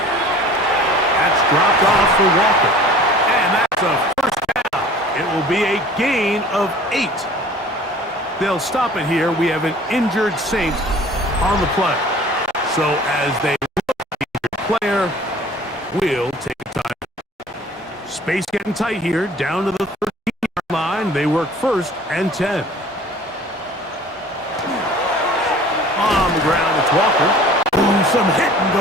That's dropped off for Walker. And that's a 1st down. It will be a gain of 8. They'll stop it here. We have an injured Saint on the play. So as they look at the injured player, we'll take a time. Space getting tight here, down to the 13-yard line. They work 1st and 10. On the ground, it's Walker. Ooh, some hitting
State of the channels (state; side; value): normal; both; correlation 0.47